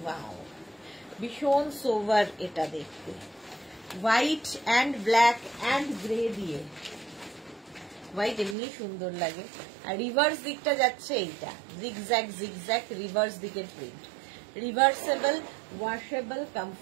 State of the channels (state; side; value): drops out; left; at 8.6 s